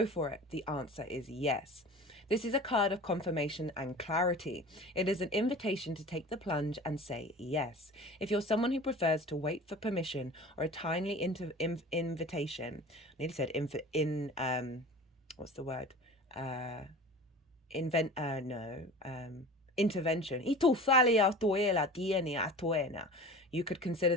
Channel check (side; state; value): both; normal; correlation 0.38